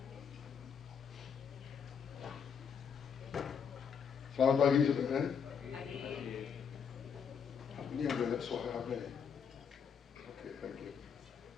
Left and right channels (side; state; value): right; quieter; 6.9 dB